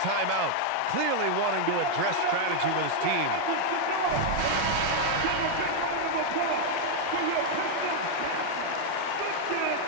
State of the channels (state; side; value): different; both; correlation 0.00